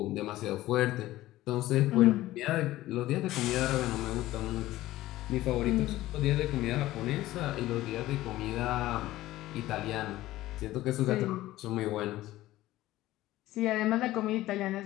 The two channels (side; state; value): right; quieter; 16.1 dB